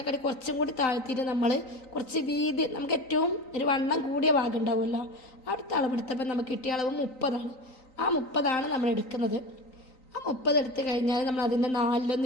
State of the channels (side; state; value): right; late; 3.9 ms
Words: കുറച്ചും കൂടി താഴ്ത്തിയിട്ട് നമ്മൾ കുറച്ച് വീതി, നമുക്ക് ഏറ്റവും ഒരു വണ്ണം കൂടിയ ഭാഗം ഉണ്ടാവുമല്ലോ, അടുത്ത അളവെടുത്തപ്പോൾ നമുക്ക് കിട്ടിയ അളവ് 30ആണ്. ആ 30ആണ് നമ്മൾ എടുക്കുന്നത്. ആ 30 എടുത്ത് കഴിഞ്ഞാൽ നമ്മൾ അതിൻ്റെ 4